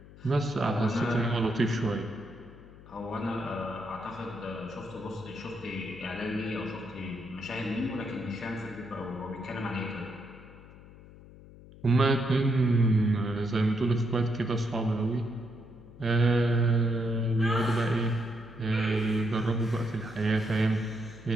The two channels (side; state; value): left; noise; hum, 19 dB below the sound